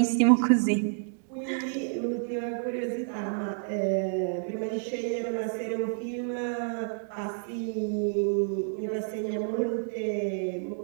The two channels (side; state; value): left; silent; digital silence